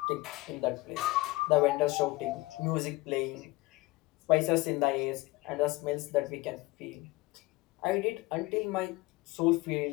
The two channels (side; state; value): right; quieter; 20.6 dB